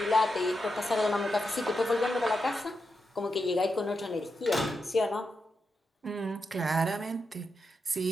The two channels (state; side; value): normal; both; correlation 0.86